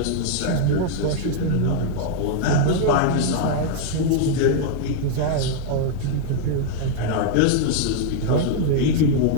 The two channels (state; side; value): different; both; correlation 0.00